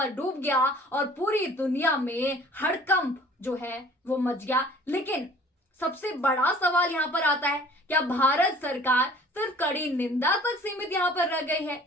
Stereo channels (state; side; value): normal; both; correlation 0.50